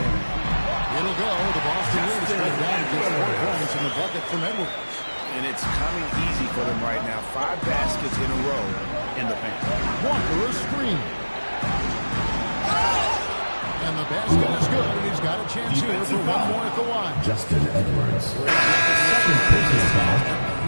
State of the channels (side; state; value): both; inverted; correlation -1.00